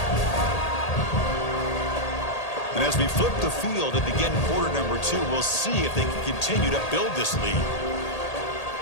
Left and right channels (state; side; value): late; right; 1.8 ms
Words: And as we flip the field and begin quarter number 2, we'll see if they can continue to build this lead.